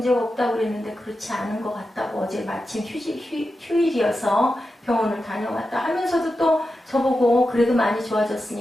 없다고 그랬는데 그렇지 않은 것 같다고, 어제 마침 휴일이어서 병원을 다녀왔다 하면서도 또 저보고 그래도 많이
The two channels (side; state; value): both; normal; correlation 0.90